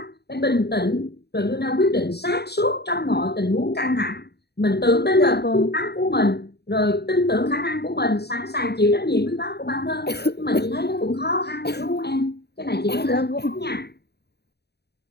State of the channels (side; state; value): right; late; 0.48 ms